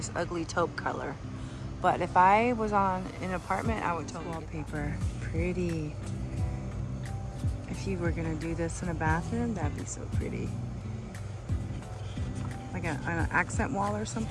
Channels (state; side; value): identical; both; correlation 1.00